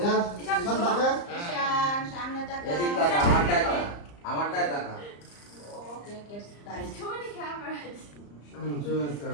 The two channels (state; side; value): late; right; 34 ms